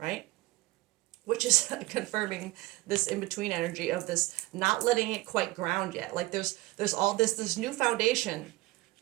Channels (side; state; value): left; quieter; 19.7 dB